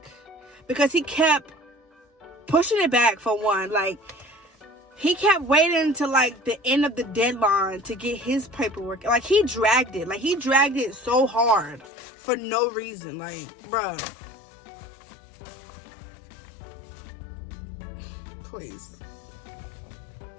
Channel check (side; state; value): right; drops out; at 11.9 s